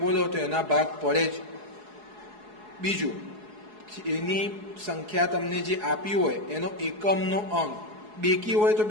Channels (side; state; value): left; late; 4.7 ms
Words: તો એના ભાગ પડે જ બીજું એની સંખ્યા તમને જે આપી હોય એનો એકમનો અંક બેકી હોય તો